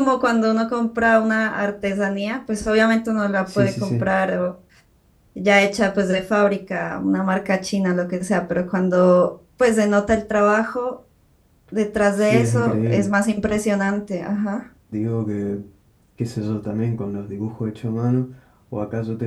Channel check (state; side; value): identical; both; correlation 1.00